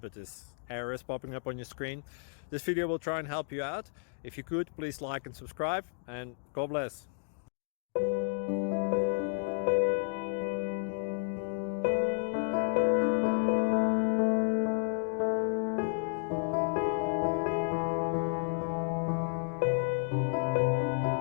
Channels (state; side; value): silent; right; digital silence